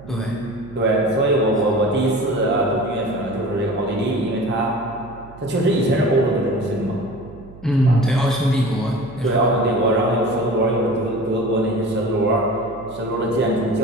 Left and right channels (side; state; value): right; noise; hum, 20 dB below the sound